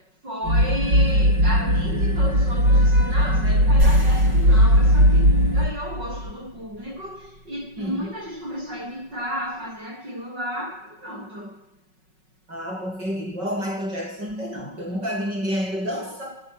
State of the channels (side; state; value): left; late; 5.4 ms